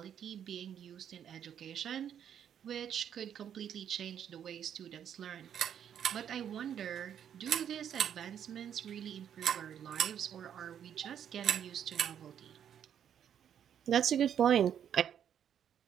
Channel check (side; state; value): left; quieter; 9.1 dB